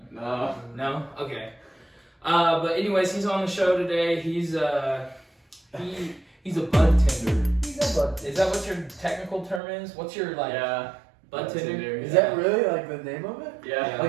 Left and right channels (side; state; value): left; drops out; at 9.6 s